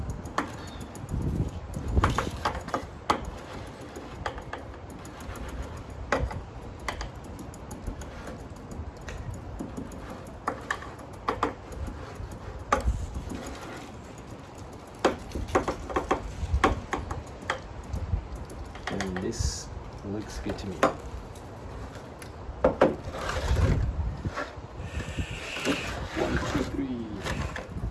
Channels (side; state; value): both; identical; correlation 1.00